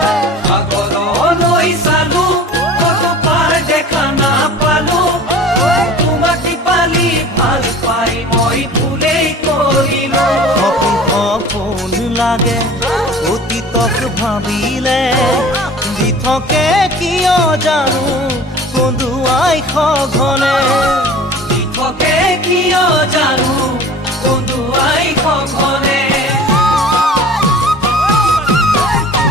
সাগৰলৈ চালো কতো পাৰ দেখা নাপালো তোমাক দীপালি ভাল পাই মই ভুলেই কৰিলো সপোন লাগে অতীতক ভাবিলে দি থাকে কিয় জানো কন্দুৱাই সঘনে দি থাকে কিয় জানো কন্দুৱাই সঘনে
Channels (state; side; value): normal; both; correlation 0.42